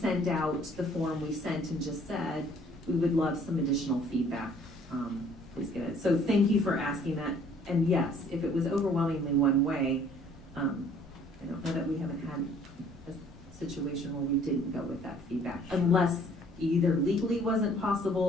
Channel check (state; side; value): normal; both; correlation 0.58